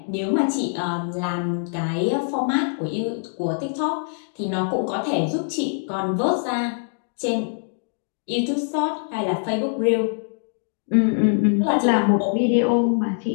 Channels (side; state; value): right; silent; digital silence